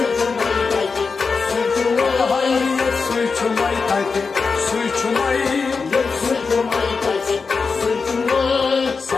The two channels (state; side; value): quieter; right; 4.8 dB